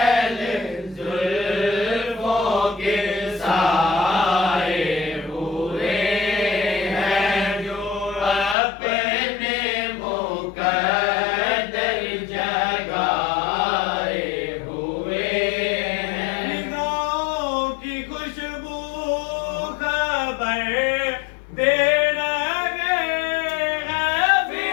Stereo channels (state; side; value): drops out; right; at 8.6 s